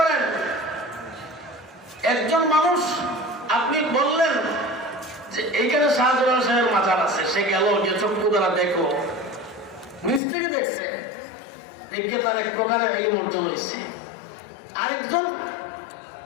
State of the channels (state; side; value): drops out; right; at 10.2 s